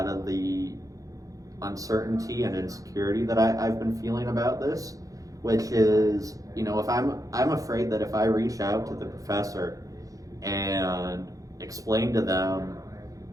of the uncertainty and insecurity that I've been feeling about this, which is, if I'm afraid that if I reach out to the professor and explain to them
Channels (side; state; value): left; late; 0.17 ms